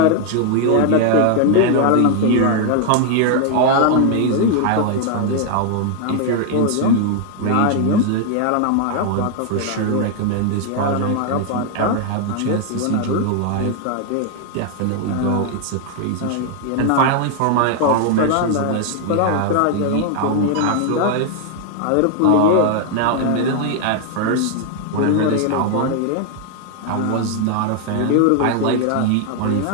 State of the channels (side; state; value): both; different; correlation 0.00